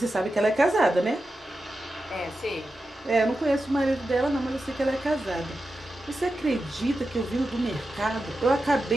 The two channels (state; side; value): normal; both; correlation 0.91